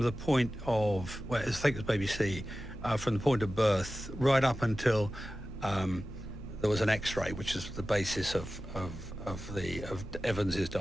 point of, well, I think it was Baby C, from the point of birth right up until there was an X-ray, which is the basis of Evans's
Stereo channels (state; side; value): normal; both; correlation 0.95